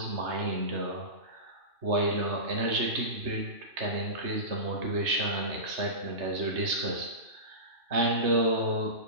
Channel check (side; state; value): left; late; 3.2 ms